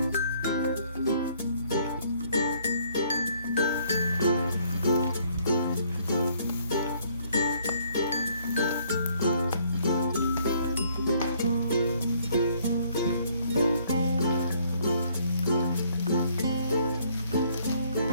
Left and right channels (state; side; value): inverted; both; correlation -0.65